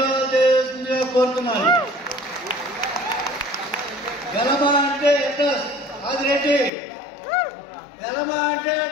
చేస్తుందిగా కోరుతున్నాను. వెలమ అంటే అడ్రస్ ఆదిరెడ్డి, వెలమ అంటే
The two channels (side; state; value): right; drops out; at 6.7 s